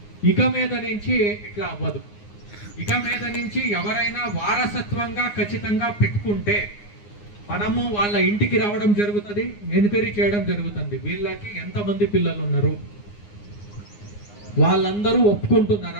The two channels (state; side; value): late; right; 9.7 ms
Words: ఇక మీద నుంచి ఇట్లా అవ్వదు. ఇక మీద నుంచి ఎవరైనా వారసత్వంగా ఖచ్చితంగా పెట్టుకుంటే మనము వాళ్ళ ఇంటికి రావడం జరుగుతుంది, ఎంక్వైరీ చేయడం జరుగుతుంది. వీళ్ళకి ఎంతమంది పిల్లలు ఉన్నారు, వాళ్ళందరూ